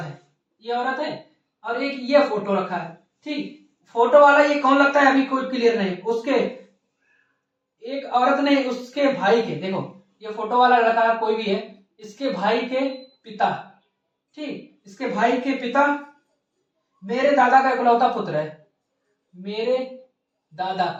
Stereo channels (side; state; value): both; identical; correlation 1.00